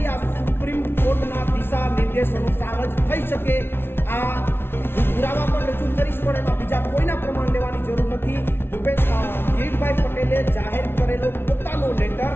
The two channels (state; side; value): late; right; 0.11 ms